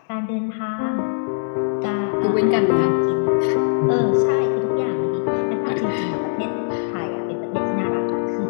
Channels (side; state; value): right; silent; digital silence